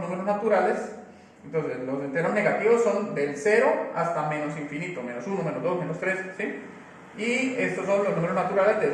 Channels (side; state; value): both; identical; correlation 1.00